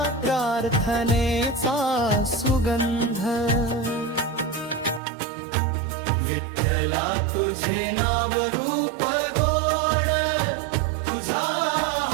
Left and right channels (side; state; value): left; drops out; at 5.0 s